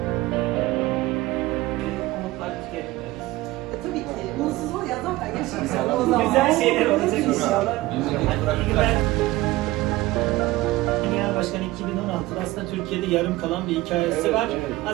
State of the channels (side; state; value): left; quieter; 18.4 dB